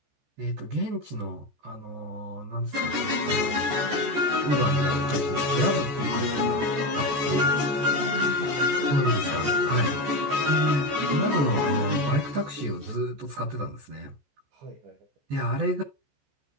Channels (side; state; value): left; late; 14 ms